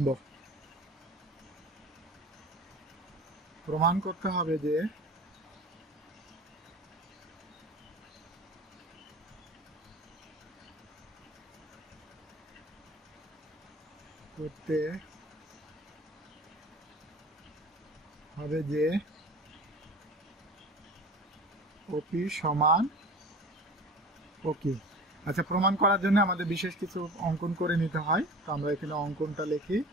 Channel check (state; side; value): normal; both; correlation 0.38